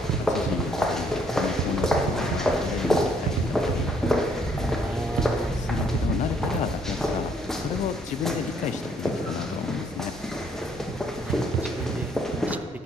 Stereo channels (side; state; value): both; normal; correlation 0.67